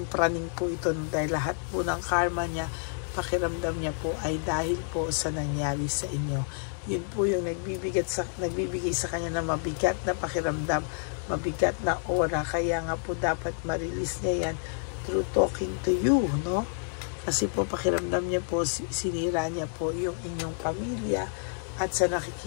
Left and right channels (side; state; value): right; silent; 59 dB below the other